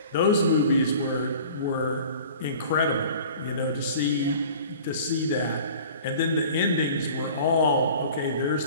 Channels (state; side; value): inverted; both; correlation -0.44